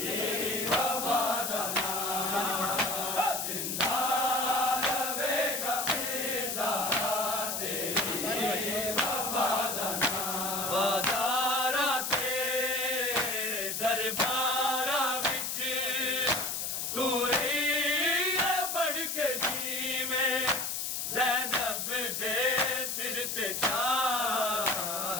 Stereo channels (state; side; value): noise; left; hiss, 2 dB below the sound